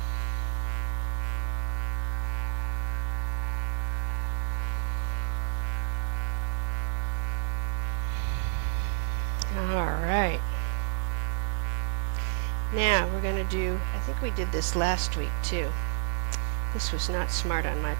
All right. Now we're going to do, I think we did this last week too. This was not smart on my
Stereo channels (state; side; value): silent; left; digital silence